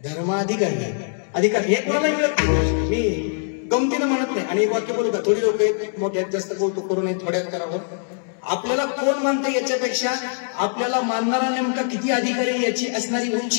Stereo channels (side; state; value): right; silent; digital silence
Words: धर्माधिकारी अधिकार हे कोणाला मिळत नाही. मी गमतीनं म्हणत नाही. आणि एक वाक्य बोलू का थोडी लोक मोठ्यात जास्त बोलतो करू नये थोड्यात करावं. आपल्याला कोण मानतं याच्यापेक्षा आपल्याला मानणारा नेमका किती अधिकारी याची असणारी